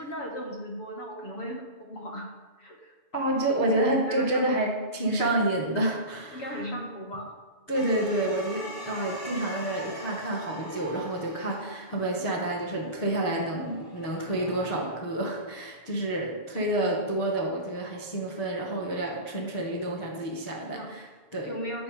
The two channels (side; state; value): right; late; 7.0 ms